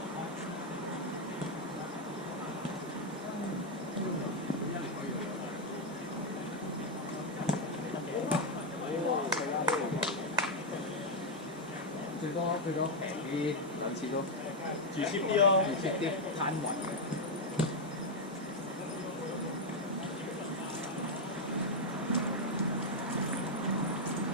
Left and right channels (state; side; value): normal; both; correlation 0.01